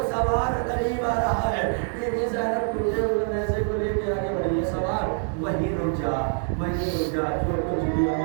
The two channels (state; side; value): silent; left; 62 dB below the other